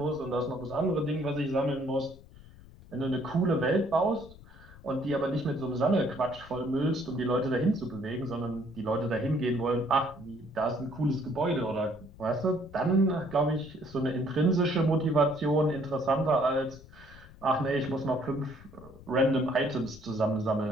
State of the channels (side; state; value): left; noise; rumble, 20 dB below the sound